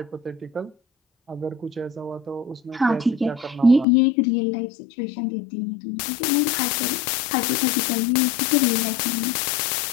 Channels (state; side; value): drops out; right; at 3.9 s